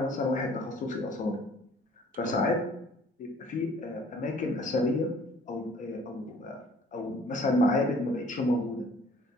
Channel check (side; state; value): both; normal; correlation 0.55